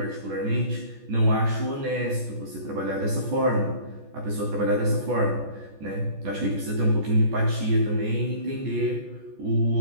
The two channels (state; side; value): late; left; 14 ms